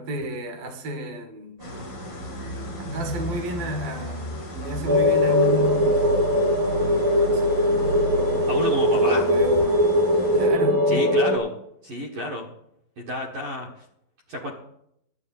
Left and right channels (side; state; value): left; late; 11 ms